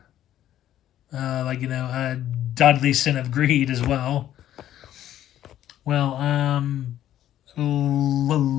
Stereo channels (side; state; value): right; quieter; 12.0 dB